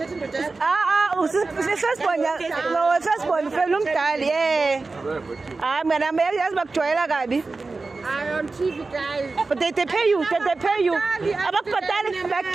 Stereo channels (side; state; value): left; quieter; 3.8 dB